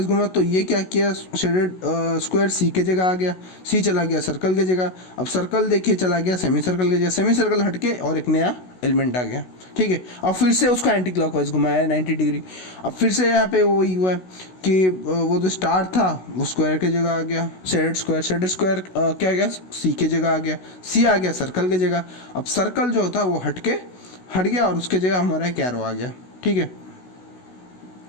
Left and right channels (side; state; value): right; late; 16 ms